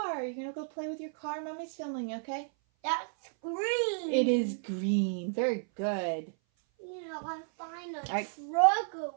You're going to go play with your car? Mommy's filming, okay? That's green. It is green. Very good. You know, I find a truck of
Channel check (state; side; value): silent; left; 56 dB below the other